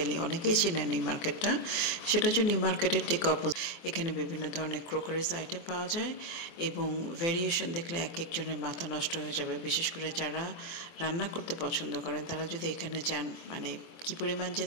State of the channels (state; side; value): late; right; 24 ms